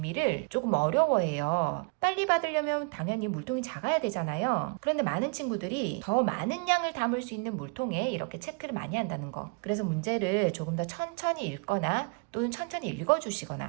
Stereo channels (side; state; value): left; quieter; 34.1 dB